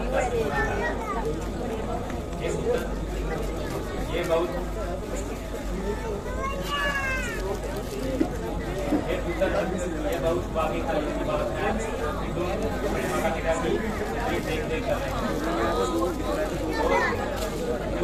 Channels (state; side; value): identical; both; correlation 1.00